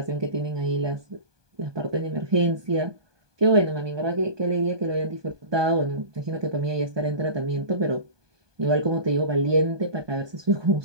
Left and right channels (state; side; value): late; left; 1.2 ms